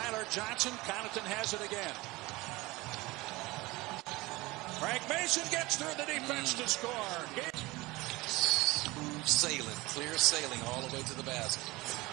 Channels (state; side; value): quieter; left; 21.4 dB